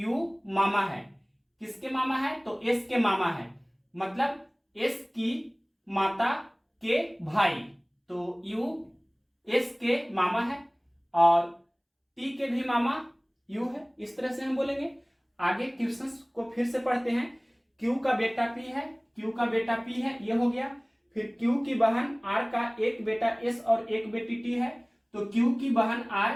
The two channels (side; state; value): both; identical; correlation 1.00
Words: मामा है, किसके मामा है, तो एस के मामा है, मतलब एस की माता के भाई। तो यू एस के मामा है और टी के भी मामा यू है, इस तरह से हम बोलेंगे। आगे क्वेश्चंस को फिर से पढ़ते हैं। क्यू का बेटा पी है, ये हो गया। फिर क्यू की बहन आर का एक बेटा एस और एक बेटी टी है, तो क्यू की बहन आर